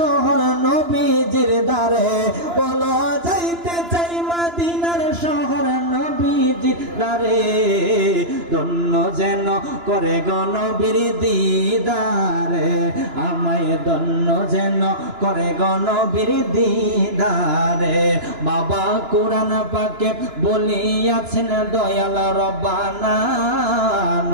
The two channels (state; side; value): late; left; 2.9 ms